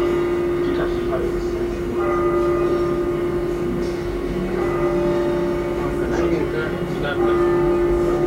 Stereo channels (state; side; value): identical; both; correlation 1.00